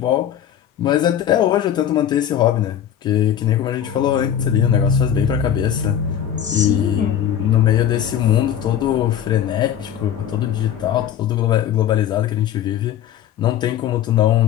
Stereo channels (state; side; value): quieter; right; 10.0 dB